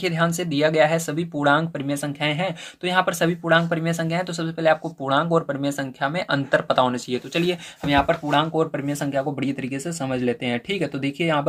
ध्यान से, दिया गया है सभी पूर्णांक परिमेय संख्याएं हैं। तो यहाँ पर सभी पूर्णांक परिमेय संख्या है, तो सबसे पहले आपको पूर्णांक और परिमेय संख्या में अंतर पता होना चाहिए। तो चलिए हम यहाँ पर पूर्णांक और परिमेय संख्या को बढ़िया तरीके से समझ लेते हैं, ठीक है। तो देखिए यहाँ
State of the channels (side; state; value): both; identical; correlation 1.00